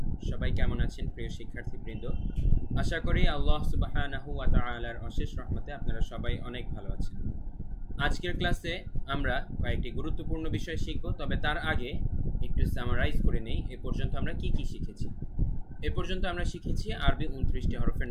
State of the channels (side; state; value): both; identical; correlation 1.00